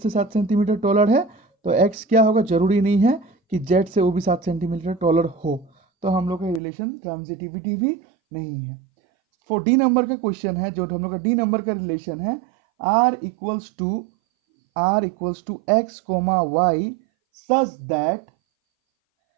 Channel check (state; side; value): drops out; left; at 6.6 s